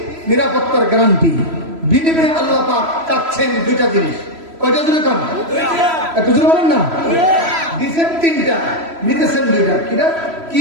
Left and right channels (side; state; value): left; late; 3.0 ms